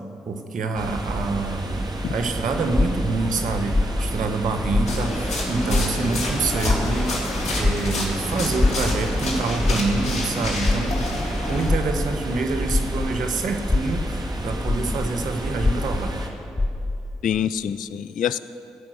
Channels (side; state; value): both; normal; correlation 0.79